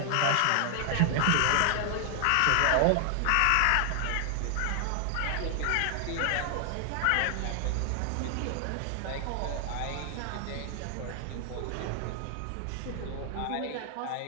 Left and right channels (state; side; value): different; both; correlation 0.00